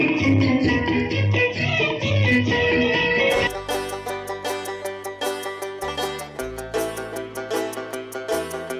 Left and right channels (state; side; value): identical; both; correlation 1.00